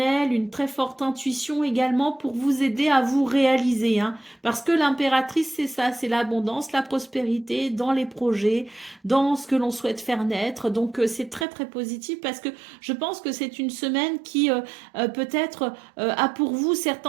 une très forte intuition également pour vous aider à vous réaliser, hein. Parce que l'impératrice, c'est ça, c'est l'abondance, la prospérité dans les projets, dans ce que l'on souhaite faire naître. Donc c'est très très positif parce que je pense que c'est une semaine qui peut-être a pour vous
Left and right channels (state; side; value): drops out; left; at 11.5 s